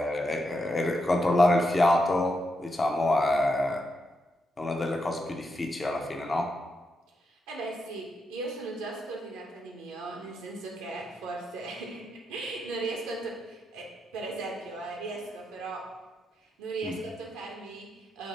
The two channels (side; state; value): both; normal; correlation 0.83